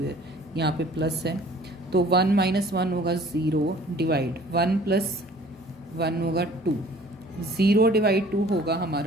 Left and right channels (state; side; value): normal; both; correlation 0.51